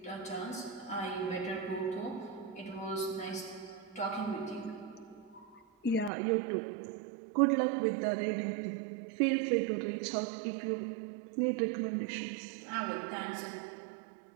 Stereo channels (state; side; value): drops out; left; at 6.1 s